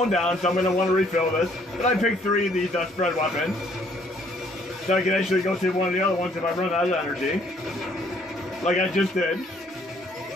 down, so I'm gonna want to refill this. But I picked 3 of these spread weapons, so I can actually go to one of the other ones if I run out of energy. Like I just did.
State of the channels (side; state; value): both; normal; correlation 0.64